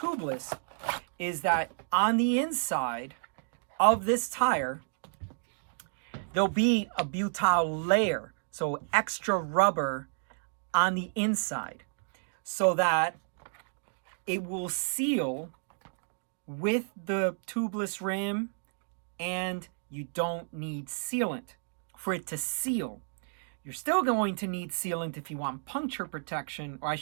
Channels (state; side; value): silent; left; digital silence